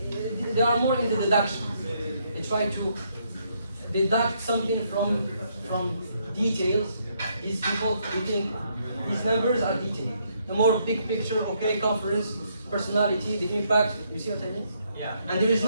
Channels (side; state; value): both; inverted; correlation -0.73